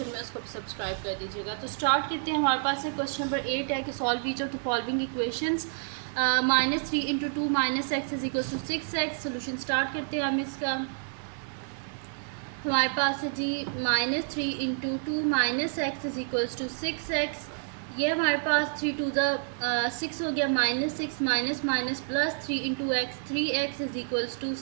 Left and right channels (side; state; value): left; silent; 58 dB below the other